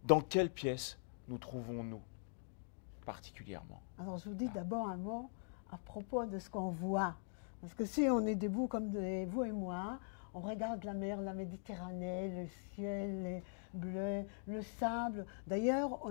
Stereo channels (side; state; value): right; silent; digital silence